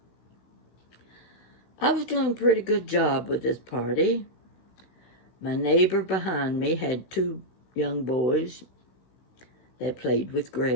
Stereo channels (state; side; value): late; right; 16 ms